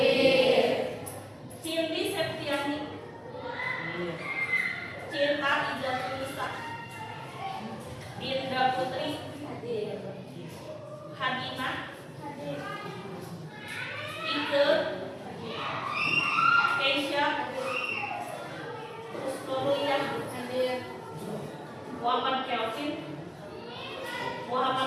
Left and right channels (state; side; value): identical; both; correlation 1.00